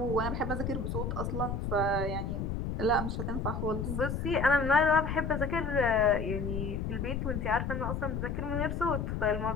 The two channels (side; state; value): left; noise; rumble, 2 dB below the sound